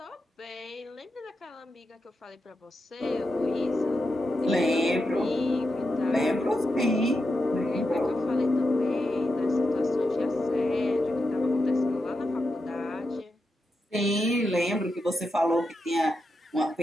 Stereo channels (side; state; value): both; normal; correlation 0.87